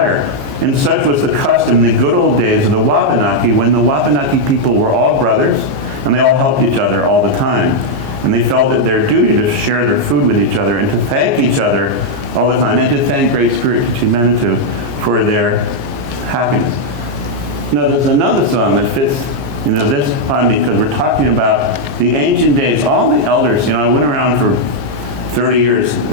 And such was the custom in the good old days of the Wabanaki, when the Wabanaki people were all brothers, and they all helped each other all the time. And they felt it their duty to share their food with each other and to thank each other all the time, and to thank Great Spirit, Manitou, for their happiness. Now, there's another song that fits this on me, because we're talking about the ancient days. All the elders, I went around for 30 years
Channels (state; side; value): late; left; 14 ms